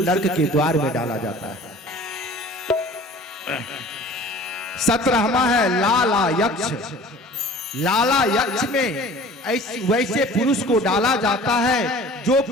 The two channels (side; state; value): both; normal; correlation 0.45